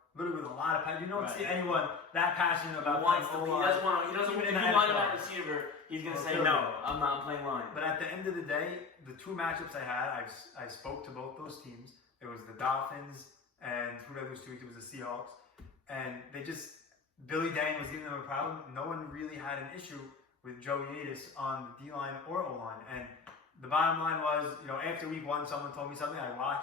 literally with a lot of passion. You don't see anyone that passionate about playing O-line. He doesn't want to be line at receiver. He's going to say, no, I'm playing line. But at the end of the day, the two matchups I had, I spoke to both those teams. It was the Dolphins, and who did I lose to? It was the Seahawks. And Billy Dang was giving them a problem. No one really had an issue with Joey Atis on the D-line or O-line. And the bottom line was, after week 1, someone told me something. I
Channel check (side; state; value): right; quieter; 4.8 dB